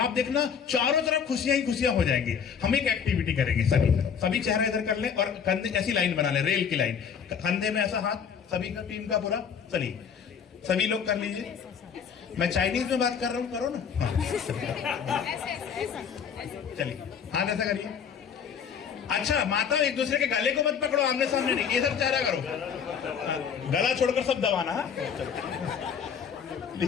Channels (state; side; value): quieter; right; 7.2 dB